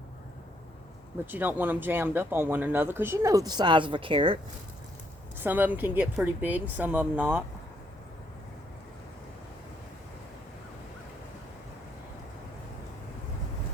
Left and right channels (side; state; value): both; normal; correlation 0.72